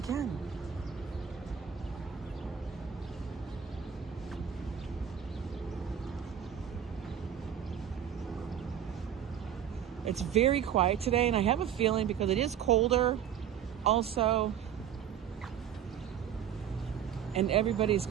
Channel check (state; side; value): quieter; left; 9.1 dB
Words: can. It's very quiet today, and I have a feeling because it is colder also, and everybody's